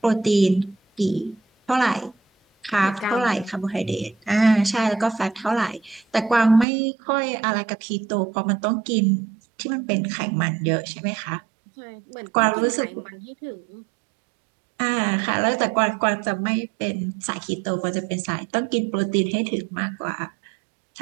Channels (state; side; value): drops out; left; at 6.7 s